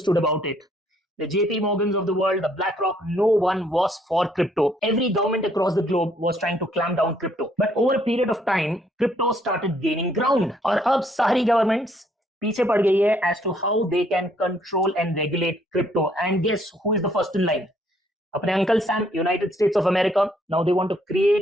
about it. The JP Morgans of the world, the BlackRock, no one was for crypto. Every government across the globe was trying to clamp down crypto. But over a period of time, crypto started gaining ground. और अब सारी governments पीछे पड़ गई है as to how they can control and regulate crypto. And guess who is the first in line? अपने Uncle Sam, United States of America. Now they want to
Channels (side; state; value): both; normal; correlation 0.67